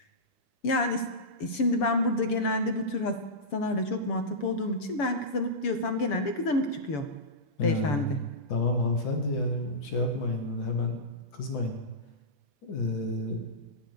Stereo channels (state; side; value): late; right; 7.0 ms